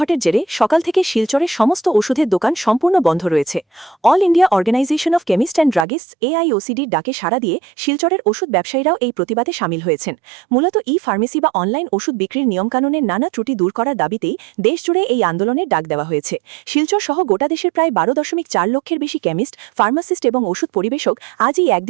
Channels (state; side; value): drops out; left; at 5.9 s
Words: জেরে সকাল থেকে শিলচরের সমস্ত ওষুধের দোকান সম্পূর্ণ বন্ধ রয়েছে। All India organization of chemist and druggists AIOCDর ডাকে সাড়া দিয়ে শিলচরের ওষুধ ব্যবসায়ীরাও এই প্রতিবাদে সামিল হয়েছেন। মূলত ফার্মেসি বা অনলাইন ওষুধ বিক্রির নিয়মকানুনের নানা ত্রুটি দূর করার দাবিতেই দেশজুড়ে এই আন্দোলনের ডাক দেওয়া হয়েছে। শিলচর সহ গোটা দেশের প্রায় ১২.৪ লক্ষের বেশি কেমিস্ট, ফার্মাসিস্ট এবং ওষুধ পরিবেশক আজ এই